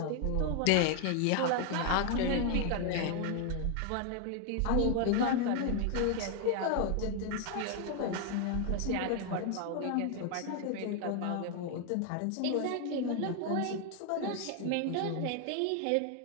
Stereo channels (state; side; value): different; both; correlation 0.00